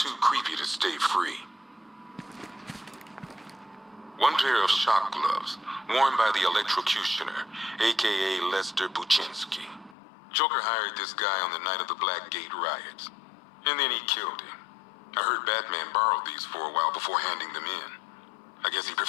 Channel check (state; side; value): drops out; right; at 10.0 s